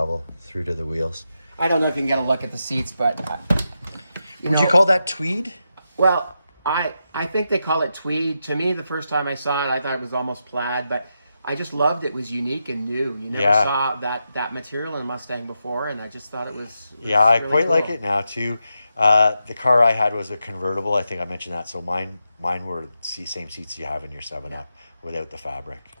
through to the wheels. I don't know if you can get a look at the seats, but... Would you call that tweed? Well, I think they call it tweed. To me, the first time I saw it, I thought it was almost plaid, but I just loved it. Was unique and new. You never saw that material in a Mustang before, and I just thought it was I really quite cool. Like it now, too. The car I had was a convertible. I think I mentioned that. So mine were the same seats you have in your 7-Up without the fabric.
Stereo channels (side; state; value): both; inverted; correlation -0.86